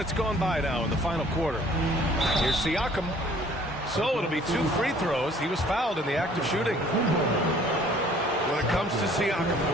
gone by now in the final quarter. Here's Siakam. So it'll be 2 free throws. He was fouled in the act of shooting. When it comes to Siakam,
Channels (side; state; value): both; normal; correlation 0.56